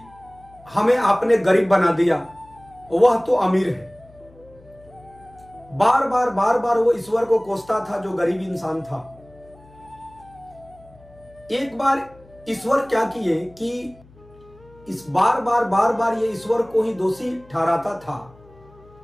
हमें आपने गरीब बना दिया, वह तो अमीर है। बार बार वो ईश्वर को कोसता था जो गरीब इंसान था। एक बार ईश्वर क्या किए कि इस बार ये ईश्वर को ही दोषी ठहराता था।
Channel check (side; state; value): left; noise; hum, 26 dB below the sound